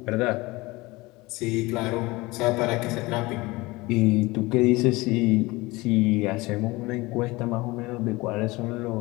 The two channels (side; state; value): right; quieter; 22.0 dB